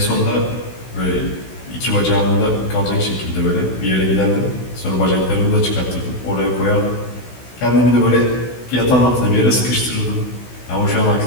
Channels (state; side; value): late; right; 16 ms